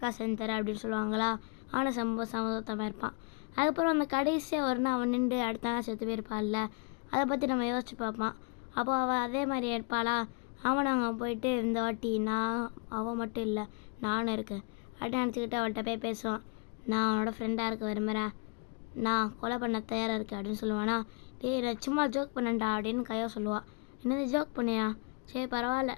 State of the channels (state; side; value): quieter; right; 34.8 dB